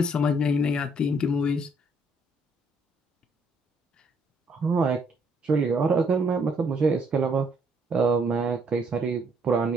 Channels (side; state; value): both; normal; correlation 0.68